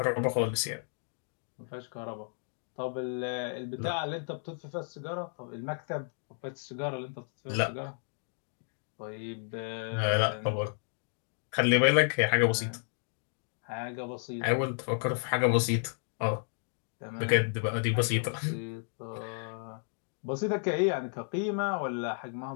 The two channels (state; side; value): silent; right; 56 dB below the other